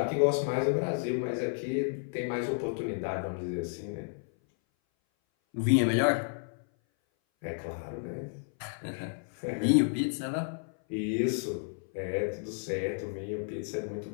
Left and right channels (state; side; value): silent; right; 57 dB below the other